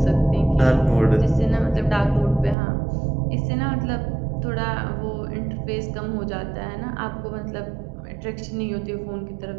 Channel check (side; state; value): left; drops out; at 2.6 s